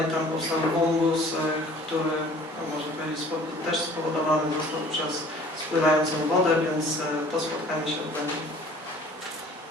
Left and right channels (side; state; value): both; normal; correlation 0.50